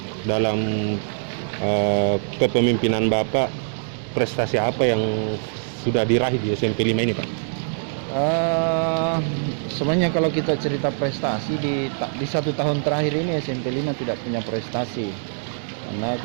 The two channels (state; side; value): silent; left; digital silence